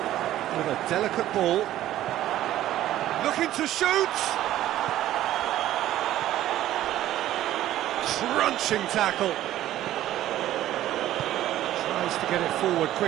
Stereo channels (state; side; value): quieter; left; 13.5 dB